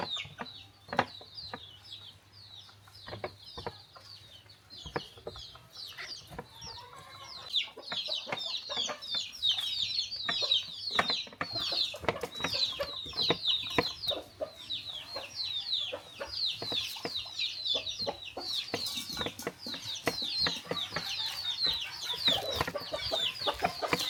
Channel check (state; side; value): identical; both; correlation 1.00